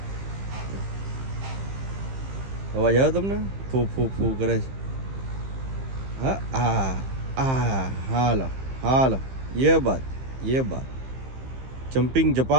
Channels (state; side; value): late; left; 15 ms